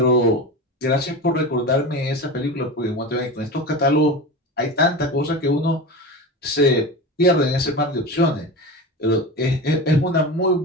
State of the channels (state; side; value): normal; both; correlation 0.26